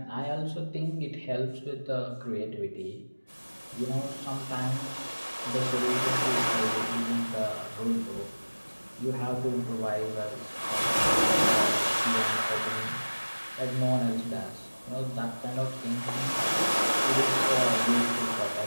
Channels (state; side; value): inverted; both; correlation -1.00